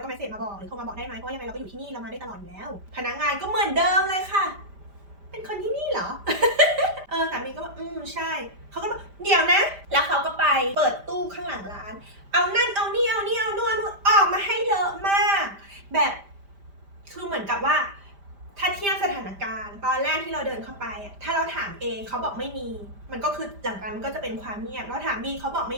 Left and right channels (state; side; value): late; left; 5.0 ms